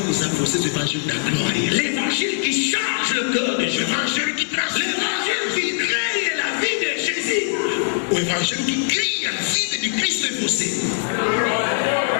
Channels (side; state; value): right; silent; digital silence